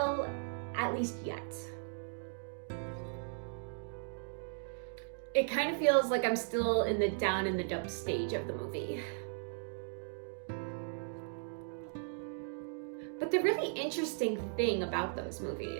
at least yet. It kind of feels like I'm still in the down in the dump stage of the movie. But the really interesting thing about those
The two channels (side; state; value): left; silent; digital silence